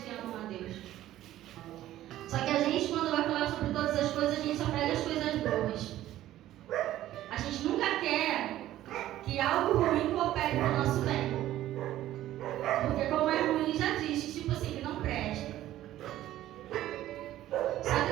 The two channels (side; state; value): left; quieter; 13.8 dB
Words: amam a Deus. Só que a gente, quando vai falar sobre todas as coisas, a gente só pega as coisas boas. A gente nunca quer que algo ruim coopere para o nosso bem. Porque como é ruim, já diz, tipo assim, que não presta. Só que